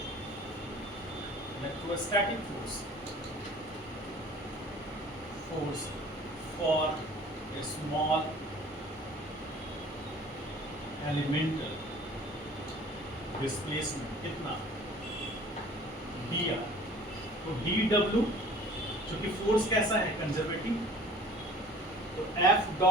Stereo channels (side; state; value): both; normal; correlation 0.47